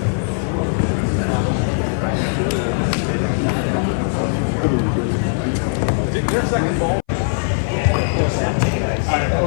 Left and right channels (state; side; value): silent; right; 61 dB below the other